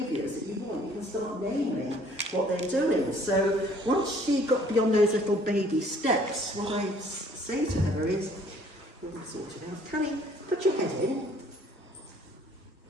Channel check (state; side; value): normal; both; correlation 0.58